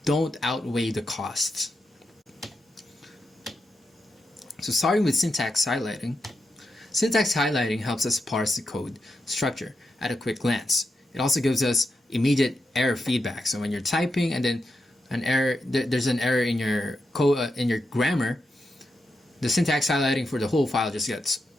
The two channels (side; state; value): both; normal; correlation 0.87